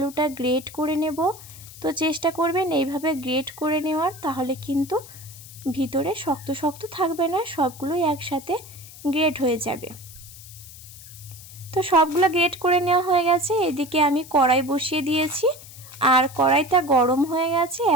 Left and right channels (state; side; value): noise; left; hiss, 17 dB below the sound